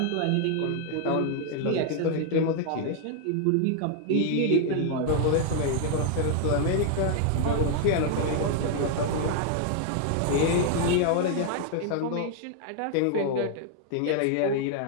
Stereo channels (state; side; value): different; both; correlation 0.00